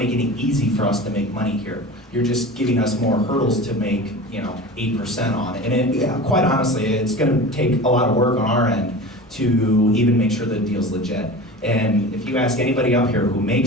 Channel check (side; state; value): both; normal; correlation 0.34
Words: it easy for us to make money here. You're just giving us more hurdles to make, 8% on it. And quite honestly, it's going to take a lot of work on our end to even make sure the deal's legit. And if you ask anybody up here who